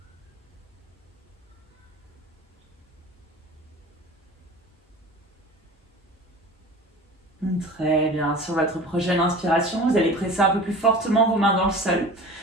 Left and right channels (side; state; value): both; normal; correlation 0.39